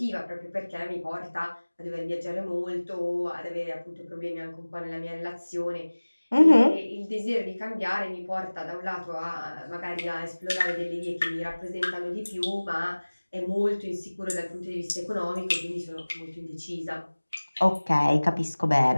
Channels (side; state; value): both; inverted; correlation -1.00